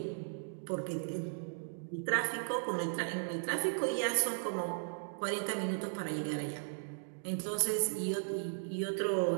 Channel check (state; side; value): silent; left; digital silence